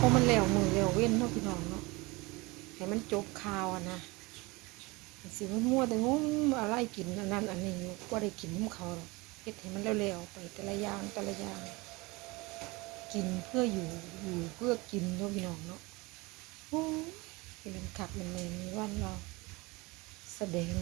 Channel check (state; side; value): quieter; left; 24.3 dB